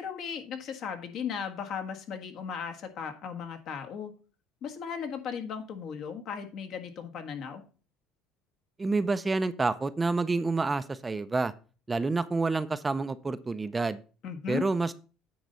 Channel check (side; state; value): both; normal; correlation 0.86